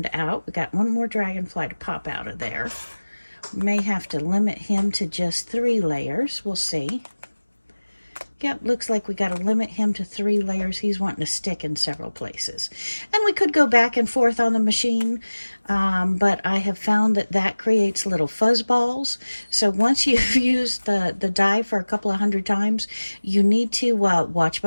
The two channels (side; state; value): both; inverted; correlation -1.00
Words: out. We got one more dragonfly to pop out of there. May have to limit him to just 3 layers. We'll see. Yep, looks like we got to limit him to 3 layers. He's wanting to stick in several places. And we could go back and forth on the machine, but I have found that that creates little fuzz balls. So once you've used the die for a couple of 100 times, you need to watch